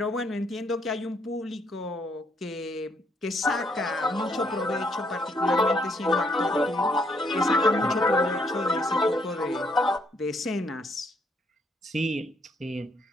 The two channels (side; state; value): both; normal; correlation 0.71